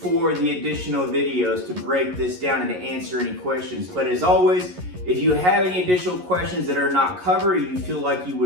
the additional videos to break this down and to answer any questions. But as always, if you have any additional questions that are not covered or you feel like you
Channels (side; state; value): left; late; 11 ms